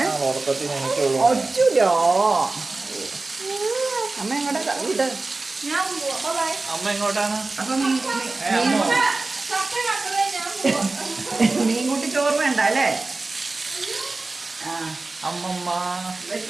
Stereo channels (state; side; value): quieter; left; 3.4 dB